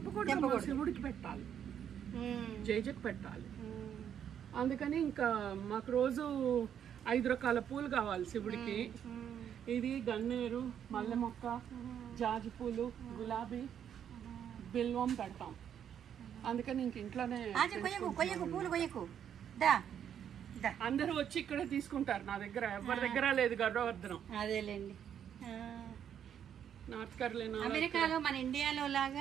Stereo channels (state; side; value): quieter; left; 9.0 dB